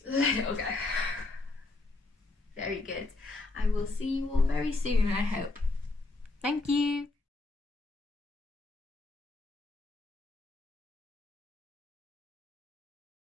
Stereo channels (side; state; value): right; quieter; 3.2 dB